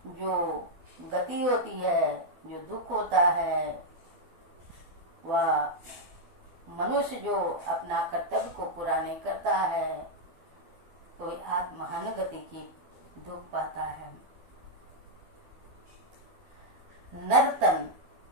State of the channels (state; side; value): late; left; 12 ms